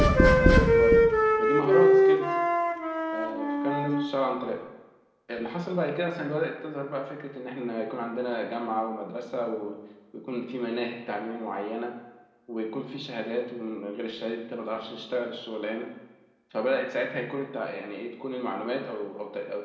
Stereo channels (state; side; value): identical; both; correlation 1.00